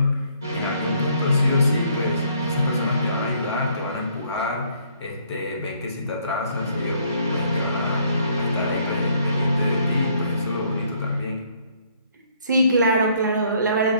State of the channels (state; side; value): inverted; both; correlation -0.65